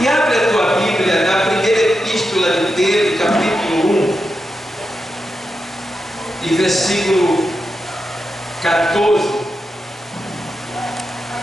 abre a tua Bíblia na primeira epístola de Pedro, capítulo 1, e versículo 14.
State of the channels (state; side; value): normal; both; correlation 0.88